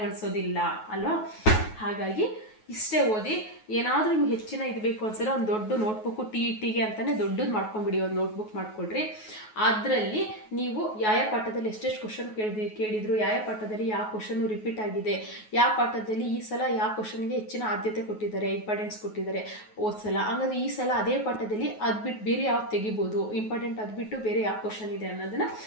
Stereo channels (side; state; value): right; late; 9.3 ms